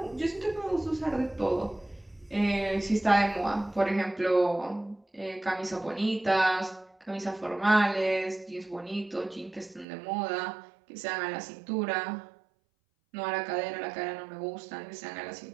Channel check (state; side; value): drops out; left; at 9.9 s